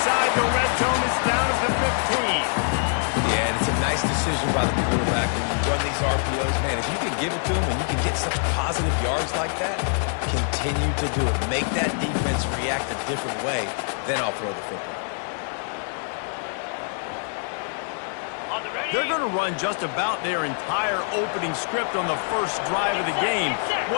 the red zone. It's down at the 15. Yeah, and it's a nice decision by the quarterback when you run these RPOs. Man, if you can give it to him and you can get such positive yards like that, continue to do it. Make that defense react a different way, then I'll throw the football. They're going to run just about their entire opening script on the first drive of the game.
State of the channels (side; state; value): right; silent; 56 dB below the other